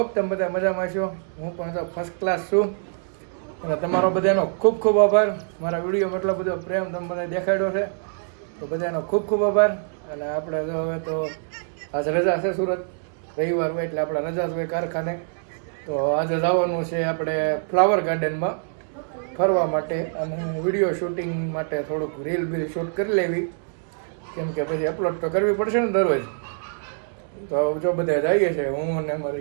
તમે બધા મજામાં છો. હું પણ તો ફર્સ્ટ ક્લાસ છું અને તમારો બધાનો ખૂબ ખૂબ આભાર. મારા વિડીયોમાં એટલો બધો પ્રેમ તમે બધા દેખાડ્યો છે, તો બધાનો ખૂબ ખૂબ આભાર. અને આપણે તો હવે તો આજ રજા છે, સુરત રવિવાર હોય એટલે આપણે રજા જ હોય કારખાને. તો આજે જવાનું છે આપણે ફ્લાવર ગાર્ડનમાં ફરવા માટે અને વિડીયો શૂટિંગ માટે થોડુંક રીલ બીલ શૂટ કરી લેવી, કેમ કે પછી અપલોડ તો કરવી પડશે ને દરરોજ. તો જો બધા જઈએ છે, હું ને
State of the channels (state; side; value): silent; left; 62 dB below the other